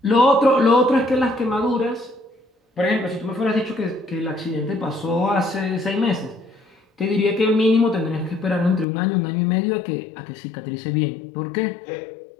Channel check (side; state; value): right; drops out; at 8.8 s